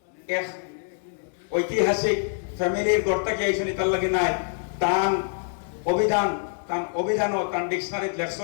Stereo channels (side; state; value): right; silent; 61 dB below the other